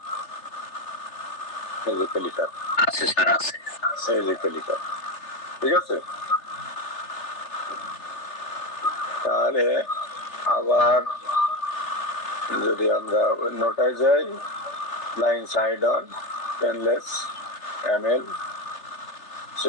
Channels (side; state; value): right; late; 3.3 ms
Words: এই যে ক্যালিকার আছে স্যার, আছে, এই যে ক্যালিকার, ঠিক আছে। তাহলে আবার যদি আমরা নোটায় যাই, line side on painless ML,